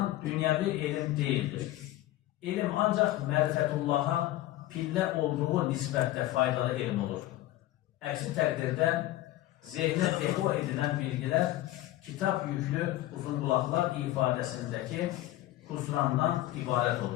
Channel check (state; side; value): quieter; right; 15.5 dB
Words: dünyevi ilim değildir. İlim ancak merifetullah'a pillə olduğu nisbətdə faydalı elm olur. Əksi təqdirdə zehnə depo edilən bilgilər kitab yüklü uzunqulaqlar ifadəsindəki husrandan ibarət